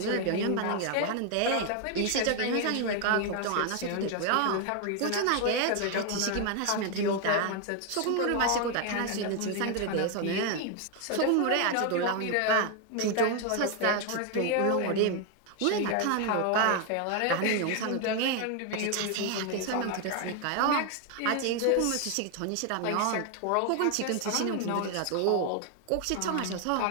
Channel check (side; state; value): both; different; correlation 0.01